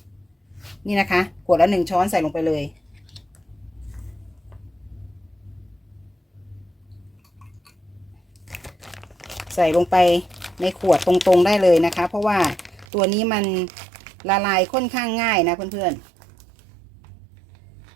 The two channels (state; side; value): drops out; left; at 12.9 s